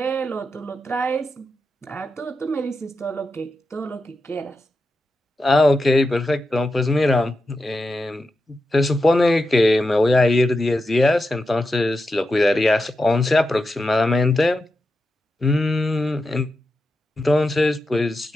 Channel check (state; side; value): normal; both; correlation 0.89